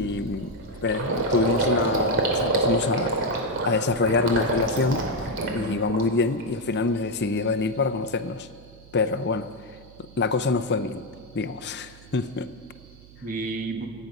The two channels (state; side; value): noise; right; hum, 22 dB below the sound